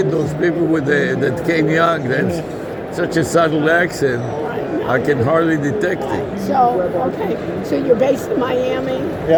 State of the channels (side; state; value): both; identical; correlation 1.00